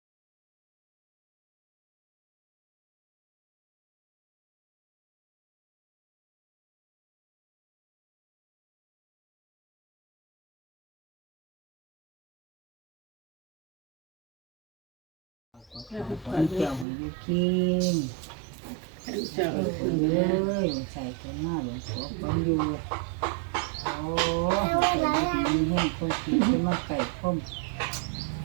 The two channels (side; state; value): left; drops out; at 16.9 s